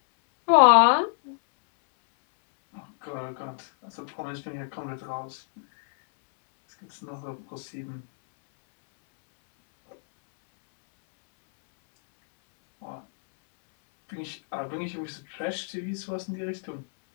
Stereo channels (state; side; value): silent; right; 60 dB below the other